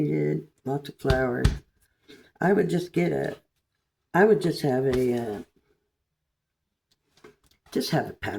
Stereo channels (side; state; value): both; identical; correlation 1.00